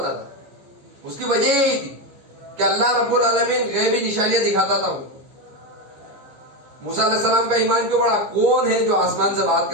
تھا؟ اس کی وجہ یہی تھی کہ اللہ رب العالمین غیبی نشانیاں دکھاتا تھا. موسیٰ علیہ السلام کا ایمان کیوں بڑھا؟ کون ہے جو آسمان سے بات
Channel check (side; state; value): left; late; 15 ms